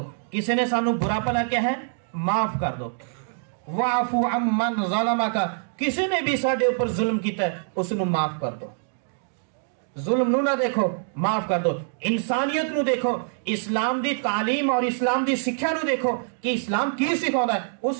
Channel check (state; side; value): silent; left; digital silence